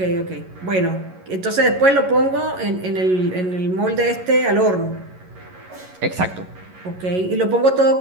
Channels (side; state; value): left; late; 11 ms